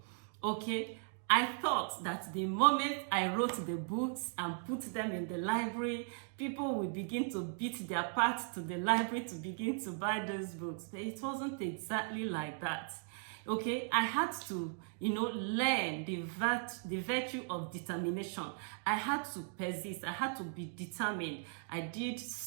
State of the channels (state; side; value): silent; left; 53 dB below the other